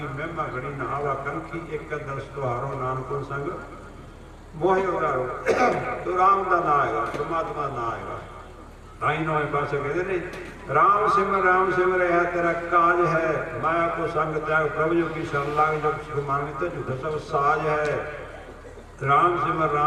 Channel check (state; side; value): identical; both; correlation 1.00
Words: महिमा घड़ी नहावा कंखी एक दर्श तुहारो नानक संग मोहि उदारो। तो राम का नाम आएगा, परमात्मा ना आएगा। ताई नौवें पासे कहते ने राम सिमर है तेरा काज है, माया को संग त्याग प्रभु जो की शरण लाग जो सुख मांगते झूठा सब साज है। राम